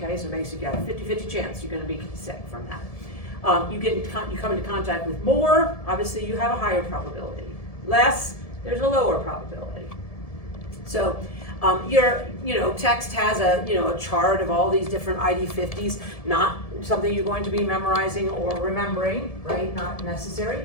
so basically you got a 50-50 chance you're gonna be sick from that. You come into contact with more, obviously you have a higher probability. Less, there's a lower probability. So text has a chart of all these different ID50s, not something you're going to be memorizing or remembering, right? Not necessary.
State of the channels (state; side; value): late; right; 1.7 ms